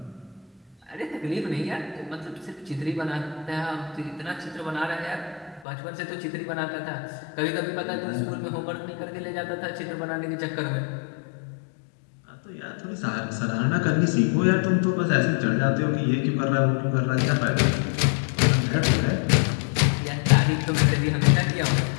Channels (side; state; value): right; drops out; at 5.7 s